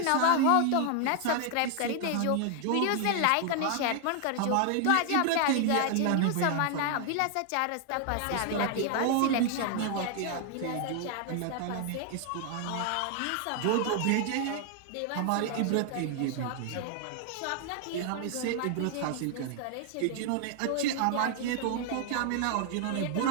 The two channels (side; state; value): both; different; correlation 0.00